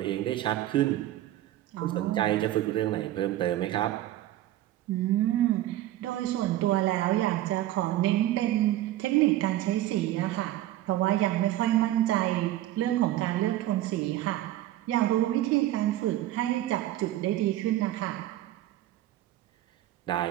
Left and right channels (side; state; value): left; quieter; 14.3 dB